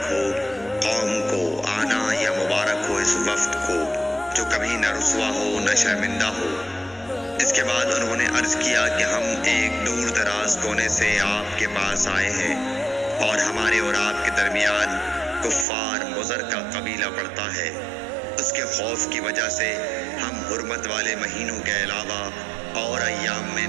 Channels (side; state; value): left; drops out; at 15.7 s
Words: ہو قوم کو آنا یا مبارک ہو اس وفد کو جو کبھی نہ رسوا ہو نہ شرمندہ ہو۔ اس کے بعد انہوں نے عرض کیا کہ ہم ایک دور دراز کونے سے آپ کے پاس آئے ہیں اور ہمارے اور آپ کے درمیان کفار مضر کا قبیلہ پڑتا ہے۔ اس کے خوف کی وجہ سے ہم حرمت والے مہینوں کے علاوہ اور ایام میں